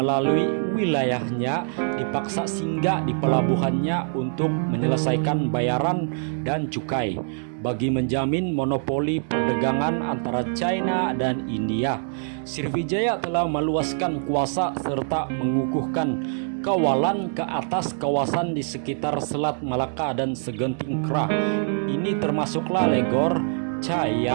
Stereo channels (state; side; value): silent; left; 62 dB below the other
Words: wilayahnya dipaksa singgah di pelabuhannya untuk menyelesaikan bayaran dan cukai bagi menjamin monopoli perdagangan antara China dan India. Sriwijaya telah meluaskan kuasa serta mengukuhkan kawalan ke atas kawasan di sekitar Selat Malaka dan Segenting Kra. Ini termasuklah Legor,